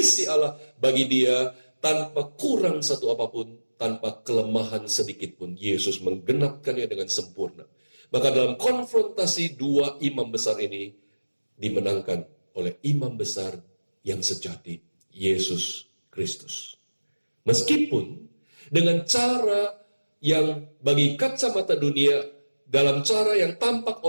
Allah bagi dia, tanpa kurang satu apapun, tanpa kelemahan sedikit pun. Yesus menggenapkannya dengan sempurna. Maka dalam konfrontasi dua imam besar ini dimenangkan oleh imam besar yang sejati, Yesus Kristus. Meskipun dengan cara yang bagi kacamata dunia, dalam cara yang tampak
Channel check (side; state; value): both; inverted; correlation -1.00